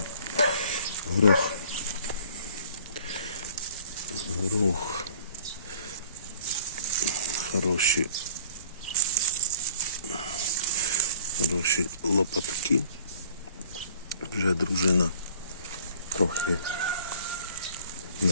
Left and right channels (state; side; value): inverted; both; correlation -0.52